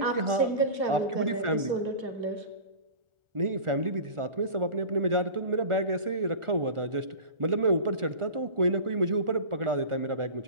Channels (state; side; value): late; left; 1.4 ms